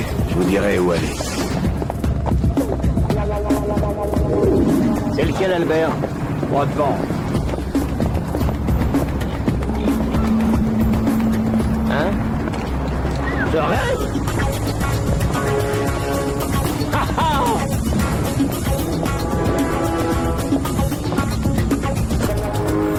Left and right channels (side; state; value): both; identical; correlation 1.00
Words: Je vous dirai où aller. C'est lequel, Albert? Droit devant. Hein? Je rêve?